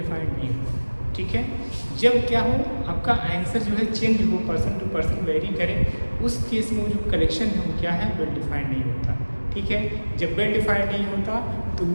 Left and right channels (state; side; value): inverted; both; correlation -1.00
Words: नहीं होगा। ठीक है, जब क्या हो आपका आंसर जो है चेंज हो, पर्सन टू पर्सन वेरी करे, उस केस में वो जो कलेक्शन है वो क्या है, वेल डिफाइंड नहीं होता। ठीक है, जब वेल डिफाइंड नहीं होता तो